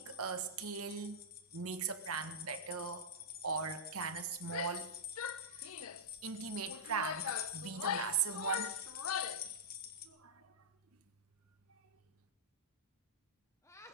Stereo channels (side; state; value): both; normal; correlation -0.11